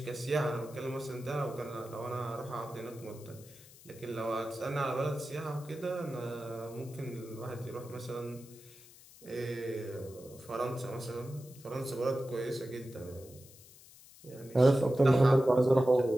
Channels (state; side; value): noise; left; hiss, 21 dB below the sound